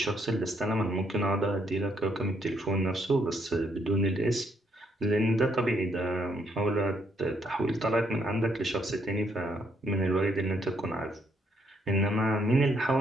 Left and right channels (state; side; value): normal; both; correlation 0.73